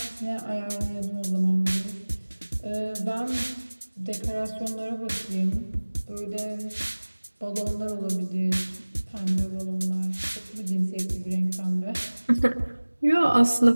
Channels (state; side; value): inverted; both; correlation -1.00